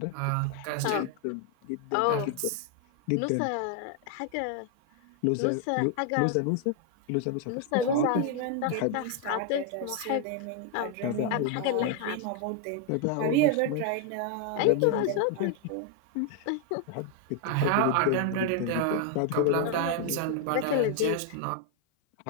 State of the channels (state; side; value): different; both; correlation 0.00